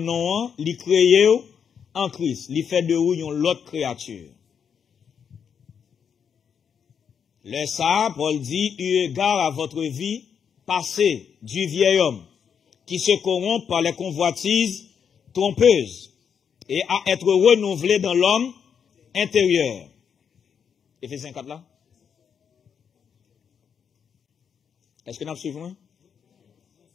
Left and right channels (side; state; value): right; quieter; 7.3 dB